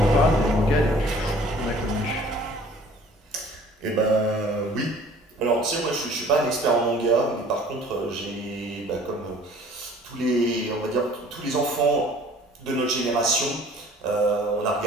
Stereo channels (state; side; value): normal; both; correlation 0.51